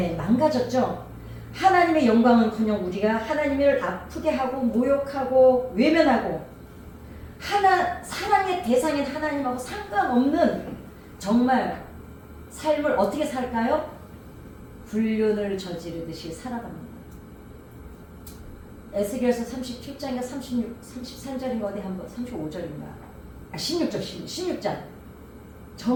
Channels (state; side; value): identical; both; correlation 1.00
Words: 망가졌죠. 하나님의 영광은커녕 우리가 하나님을 아프게 하고 모욕하고 외면하고 사랑의 대상인 하나님하고 상관없는 정말 삶을 어떻게 살까요? 불륜을 저지르듯이 살아갑니다. 에스겔서 37장인가 33절인가 어디 한번 35절인가 16장